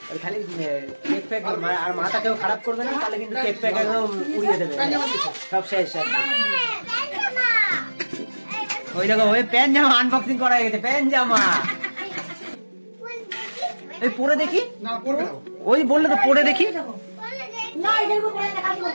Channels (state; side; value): inverted; both; correlation -1.00